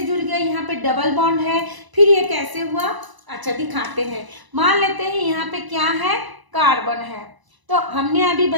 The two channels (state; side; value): late; left; 1.0 ms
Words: जुड़ गया? यहाँ पे डबल बॉन्ड है, फिर ये कैसे हुआ? अच्छा दिखाते हैं। मान लेते हैं यहाँ पे क्या है? कार्बन है। तो हमने अभी